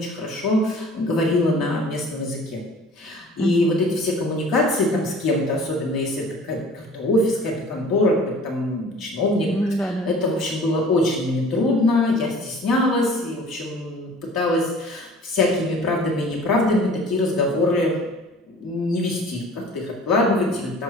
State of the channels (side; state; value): both; normal; correlation 0.47